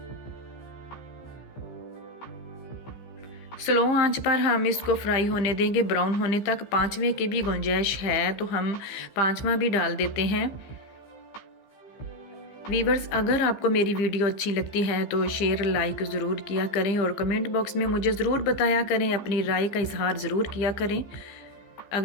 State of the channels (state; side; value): late; right; 15 ms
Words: स्लो आंच पर हम इसको फ्राई होने देंगे, ब्राउन होने तक। 5वें की भी गुंजाइश है तो हम 5वां भी डाल देते हैं। वीवर्स, अगर आपको मेरी वीडियो अच्छी लगती है तो शेयर लाइक ज़रूर किया करें और कमेंट बॉक्स में मुझे ज़रूर बताया करें, अपनी राय का इजहार ज़रूर किया करें।